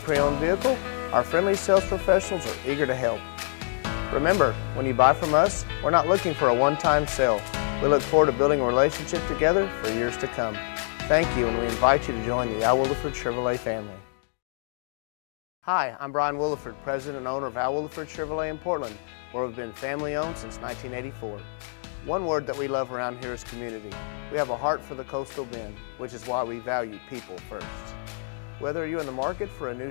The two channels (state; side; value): silent; right; digital silence